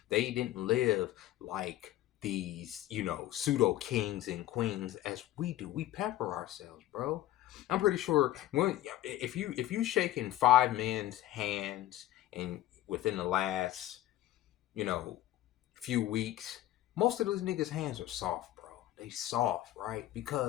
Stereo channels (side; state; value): right; quieter; 14.1 dB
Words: They didn't live like these, pseudo kings and queens as we do. We pepper ourselves, bro. I'm pretty sure if you shaking five men's hands and within the last, you know, few weeks, most of those niggas' hands are soft, bro. They soft, right?